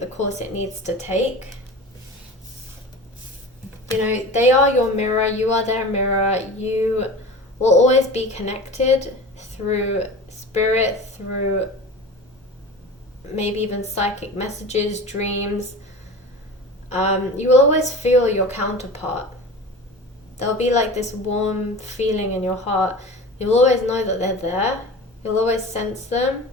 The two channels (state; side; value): normal; both; correlation 0.34